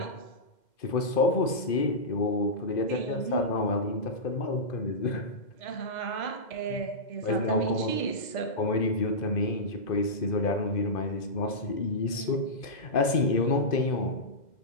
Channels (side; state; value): right; late; 2.5 ms